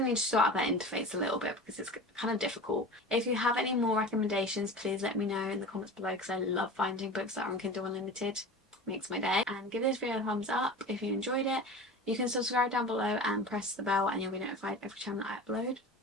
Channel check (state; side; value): normal; both; correlation 0.34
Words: to sort out that interface a little bit because it's kind of difficult. If you have any more recommendations, please let me know in the comments below, because I love finding books that are on Kindle Unlimited. It makes my day. And give this video a thumbs up if you enjoyed it. You can subscribe down below and press the bell, and you'll be notified every time that I upload.